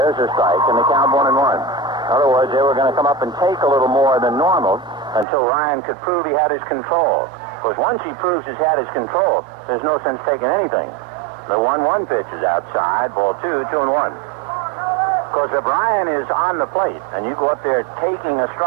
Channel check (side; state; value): left; drops out; at 5.2 s